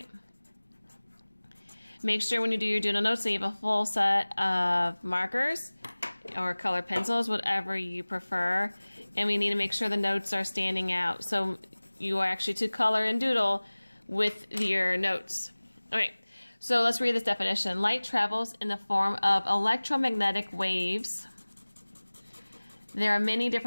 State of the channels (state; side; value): inverted; both; correlation -1.00